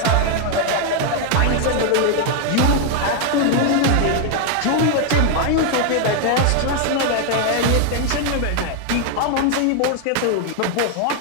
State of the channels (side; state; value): both; different; correlation 0.01